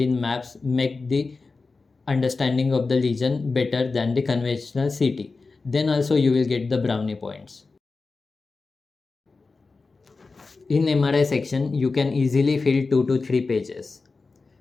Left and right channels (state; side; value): quieter; right; 4.0 dB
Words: maps make the understanding of the lesion better than the conventional CT. Then also you will get the brownie points. In MRI section, you can easily fill 2 to 3 pages.